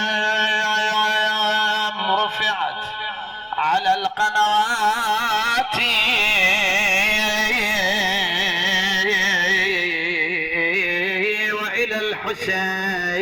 رفعت على القنوات، وإلى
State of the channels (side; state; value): both; identical; correlation 1.00